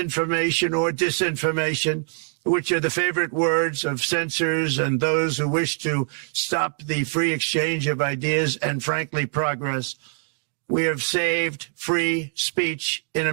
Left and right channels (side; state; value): left; silent; 63 dB below the other